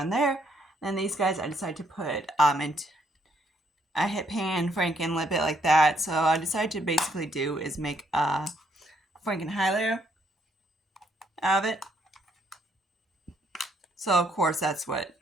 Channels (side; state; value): both; normal; correlation 0.70